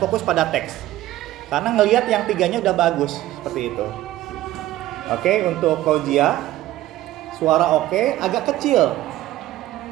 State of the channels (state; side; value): quieter; left; 15.1 dB